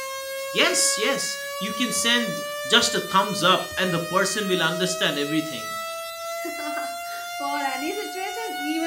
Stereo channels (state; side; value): identical; both; correlation 1.00